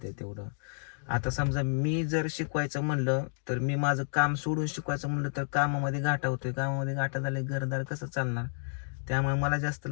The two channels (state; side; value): silent; right; digital silence